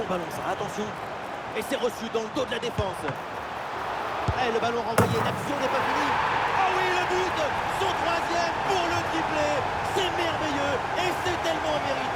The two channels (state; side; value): identical; both; correlation 1.00